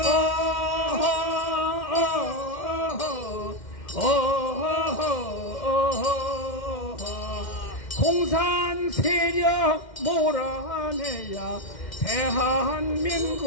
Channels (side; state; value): right; late; 2.1 ms